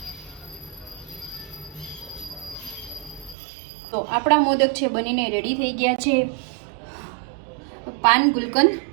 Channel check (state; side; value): drops out; left; at 3.4 s